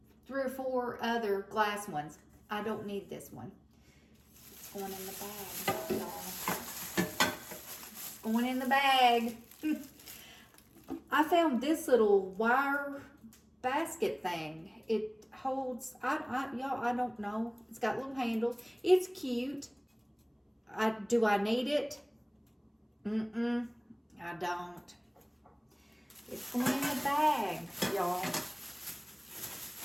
3 or 4 other glass ones. I don't need this one. It's going in the bag, y'all. It's going in the bag. I found this little wire basket thing. It holds, y'all, I don't know. It's got little handles. It's cute. Do I need it? I don't. It's going in the bag, y'all.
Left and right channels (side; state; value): both; identical; correlation 1.00